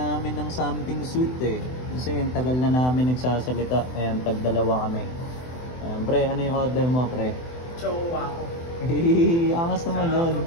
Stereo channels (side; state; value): right; late; 24 ms